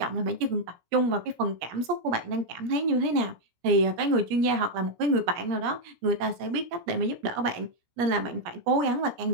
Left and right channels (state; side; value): late; left; 17 ms